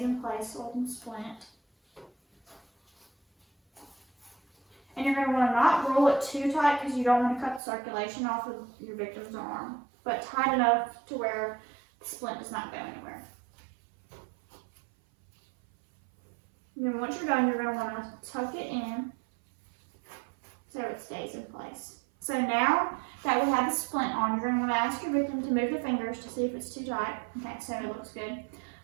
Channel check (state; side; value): drops out; left; at 7.6 s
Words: in place so it can splint. And you're going to want to not roll it too tight because you don't want to cut the circulation off of your victim's arm, but tight enough to where the splint does not go anywhere. And then once you're done, you're going to want to tuck it in so it stays in place. So now that we have the splint on, you're going to want to ask your victim to move the fingers to see if it's too tight. Okay, so it looks good.